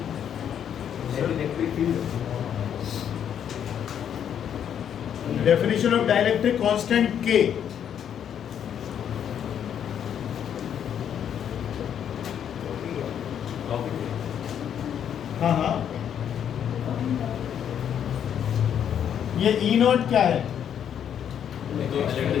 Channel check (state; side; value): quieter; right; 9.0 dB